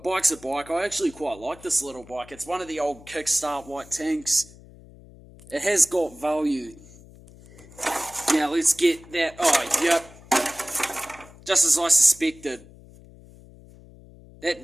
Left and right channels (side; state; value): left; noise; hum, 21 dB below the sound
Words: a bike. I actually quite like this little bike. It's one of the old Kickstart white tanks. It has got value. Now let's get that. Oh, yep. Just as I suspected. That